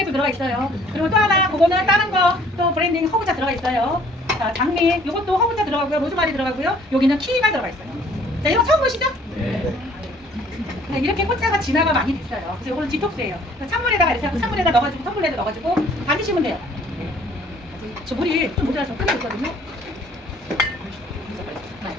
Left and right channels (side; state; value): both; normal; correlation 0.57